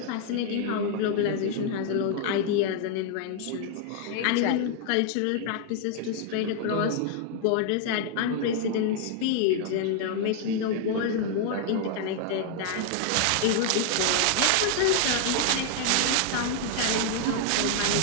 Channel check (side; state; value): both; different; correlation 0.00